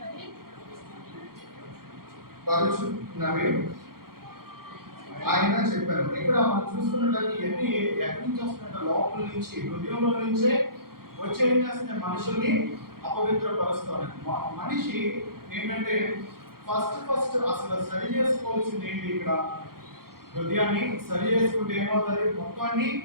పరుచున్నవి ఆయన చెప్పారు. ఇక్కడ మనం చూసుకున్నట్లయితే ఇవన్నీ ఎక్కడి నుంచి వస్తున్నట్టు లోపల నుంచి, హృదయంలో నుంచే వచ్చే ఏం చేస్తున్నాయి? మనుషుల్ని అపవిత్రపరుస్తాయి. మనిషి ఏంటంటే ఫస్ట్ అసలు సరి చేసుకోవాల్సింది ఏంటి? ఇక్కడ హృదయాన్ని సరి చేసుకుంటే ఏమవుతుంది? మొత్తాన్ని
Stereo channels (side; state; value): left; late; 0.93 ms